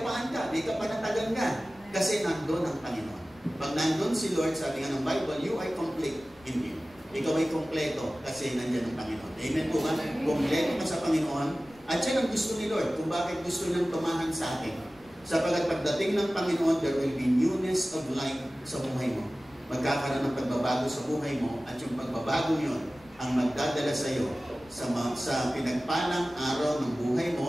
ka, may kapanatagan ka. Kasi nandun ang Panginoon. Pag nandun si Lord, sabi nga ng Bible, you are complete in Him. Ikaw ay kompleto kasi nandyan ang Panginoon. Amen po ba? Kompleto ka sa Panginoon. At yan ang gusto ni Lord kung bakit gusto niyang tumahan sa atin. Sapagat pagdating ng Panginoon, there will be newness of life sa buhay mo. Magkakaroon ng pagbabago sa buhay mo at yung pagbabago yun ang magdadala sa iyo sa pinagpalang araw ng buhay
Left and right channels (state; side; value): noise; left; rumble, 27 dB below the sound